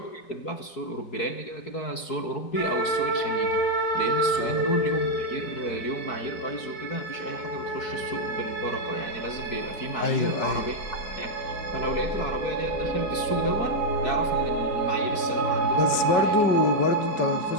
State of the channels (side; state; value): right; late; 4.6 ms